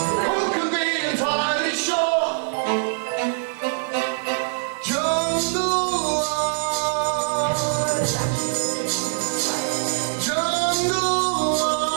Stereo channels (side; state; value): left; silent; 63 dB below the other